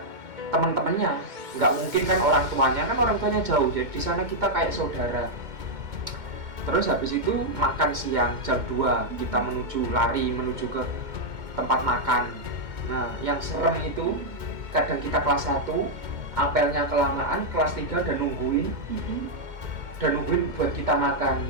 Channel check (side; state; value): left; late; 2.2 ms